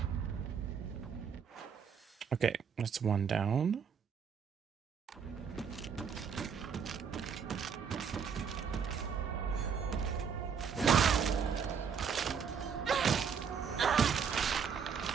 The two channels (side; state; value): left; quieter; 6.8 dB